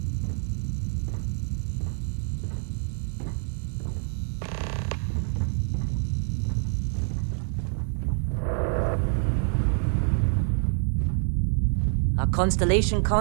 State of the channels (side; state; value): left; silent; 60 dB below the other